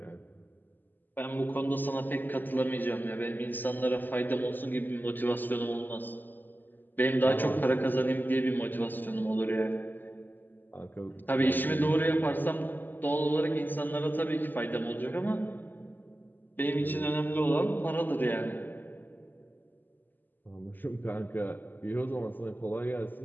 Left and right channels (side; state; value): right; late; 0.089 ms